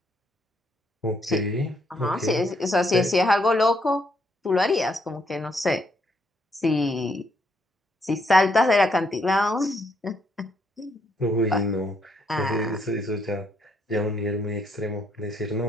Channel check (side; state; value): both; normal; correlation 0.73